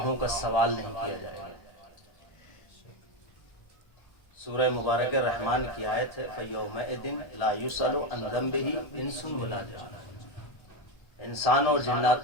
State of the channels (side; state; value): right; late; 1.4 ms